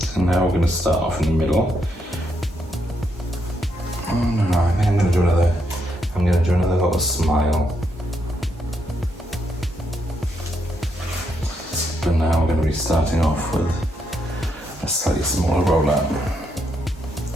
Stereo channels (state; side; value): normal; both; correlation 0.78